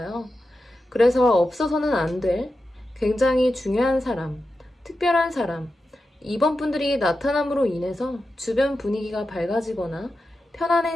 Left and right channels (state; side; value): normal; both; correlation 0.91